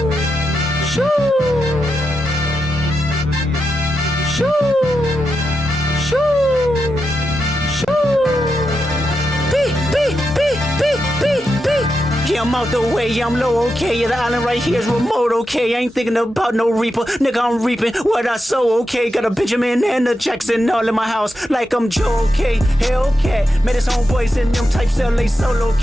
Shoo! Shoo! Shoo! Shoo! Beep, beep, beep, beep, beep, beep. Yeah, I'm out the way, yeah, I'm low, okay. Yeah, the island right here is remote, okay. I ain't thinking about no reaper, nigga, I'm reaping what I sow, okay. Got a Benjamin and a Jackson all in my house, like I'm Joe, okay. Hellcat, met his homeboys in them types LA solo,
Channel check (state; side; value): normal; both; correlation 0.87